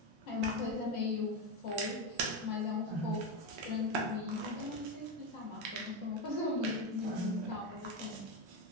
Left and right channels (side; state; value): left; late; 1.3 ms